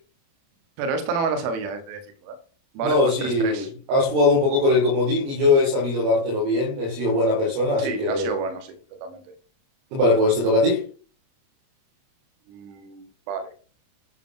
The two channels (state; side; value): late; left; 29 ms